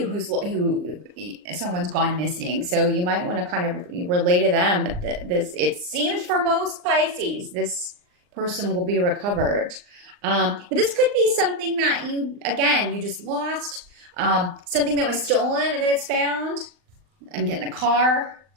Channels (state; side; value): late; left; 39 ms